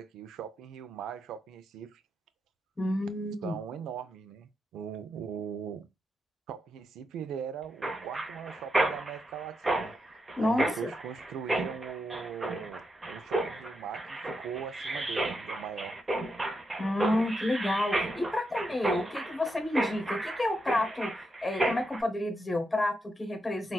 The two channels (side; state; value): both; normal; correlation 0.84